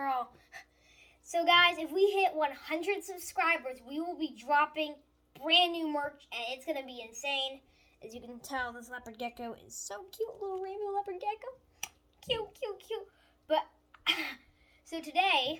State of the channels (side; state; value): both; identical; correlation 1.00